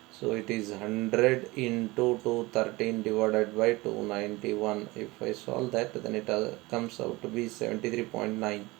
So it is 100 into 213 divided by 291. If I solve that, then it comes out to be 73.9.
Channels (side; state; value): left; quieter; 21.9 dB